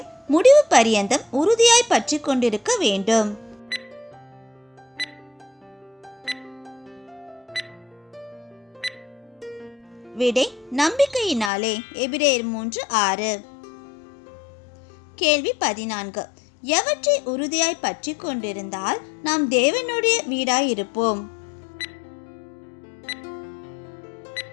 முடிவு பரியந்தம் உறுதியாய் பற்றி கொண்டிருக்க வேண்டும்? விடை நம்பிக்கையினாலே. எபிரேயர் 3:6. கேள்வி 14. எவற்றை உறுதியாய் பற்றி கொண்டிருந்தால் நாம் தேவனுடைய வீடாயிருப்போம்?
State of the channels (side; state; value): right; drops out; at 11.5 s